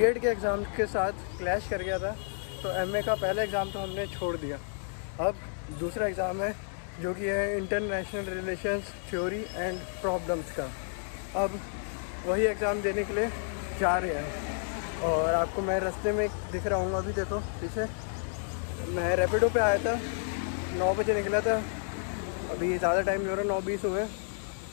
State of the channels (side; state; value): right; silent; digital silence